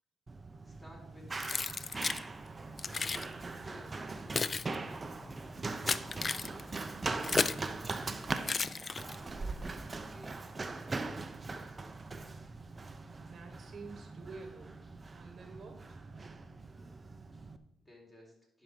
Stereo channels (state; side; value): normal; both; correlation 0.89